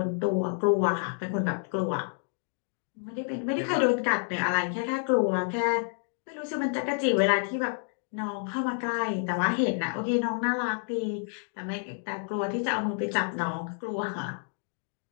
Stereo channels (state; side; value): silent; right; 58 dB below the other